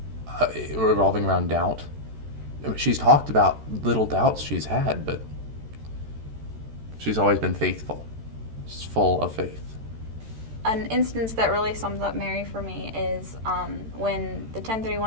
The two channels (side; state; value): left; late; 13 ms